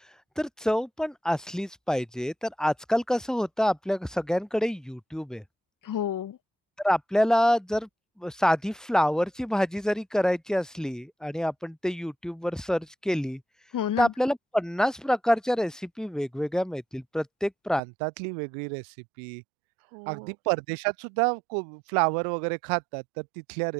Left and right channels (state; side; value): drops out; left; at 17.8 s